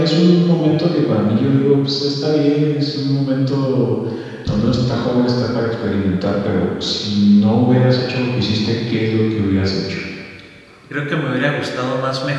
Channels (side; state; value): both; identical; correlation 1.00